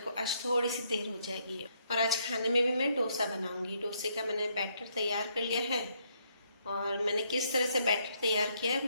आज थोड़ी सी देर हो जाएगी। और आज खाने में भी मैं डोसा बनाऊंगी। डोसे का मैंने बैटर तैयार कर लिया है और मैंने किस तरह से बैटर तैयार किया है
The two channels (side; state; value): both; inverted; correlation -0.72